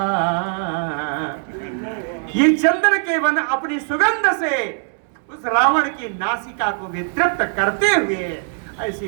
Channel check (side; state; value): left; silent; 62 dB below the other